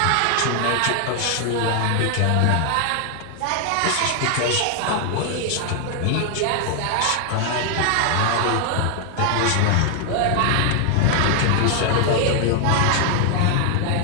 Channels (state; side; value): different; both; correlation 0.00